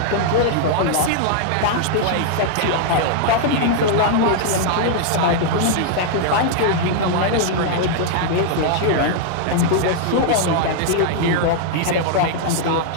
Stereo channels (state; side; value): different; both; correlation -0.01